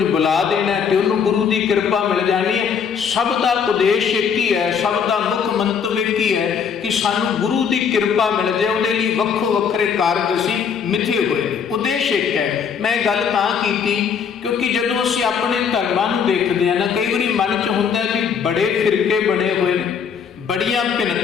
ਬੁਲਾ ਦੇਣਾ ਤੇ ਉਹਨੂੰ ਗੁਰੂ ਦੀ ਕਿਰਪਾ ਮਿਲ ਜਾਣੀ ਹੈ। ਸਭ ਦਾ ਉਦੇਸ਼ ਇੱਕ ਹੀ ਹੈ, ਸਭ ਦਾ ਮੁੱਖ ਮੰਤਵ ਇੱਕ ਹੀ ਹੈ ਕਿ ਸਾਨੂੰ ਗੁਰੂ ਦੀ ਕਿਰਪਾ ਮਿਲ ਜਾਏ। ਉਹਦੇ ਲਈ ਵੱਖੋ ਵੱਖਰੇ ਕਾਰਜ ਅਸੀਂ ਮਿਥੇ ਹੋਏ ਨੇ, ਉਦੇਸ਼ ਇੱਕ ਹੈ। ਮੈਂ ਗੱਲ ਤਾਂ ਕੀਤੀ ਕਿਉਂਕਿ ਜਦੋਂ ਅਸੀਂ ਆਪਣੇ ਧਰਮਾਂ ਨੂੰ ਦੇਖਦੇ ਹਾਂ ਨਾ, ਕਈ ਵਾਰੀ ਮਨ 'ਚ ਹੁੰਦਾ ਵੀ ਬੜੇ ਫਿਰਕੇ ਬਣੇ ਹੋਏ ਨੇ, ਬੜੀਆਂ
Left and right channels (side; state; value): right; quieter; 6.8 dB